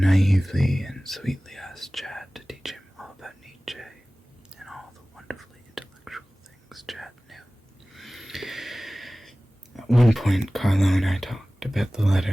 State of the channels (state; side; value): normal; both; correlation 0.98